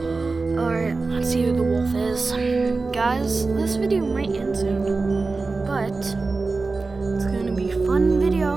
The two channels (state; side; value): quieter; left; 3.9 dB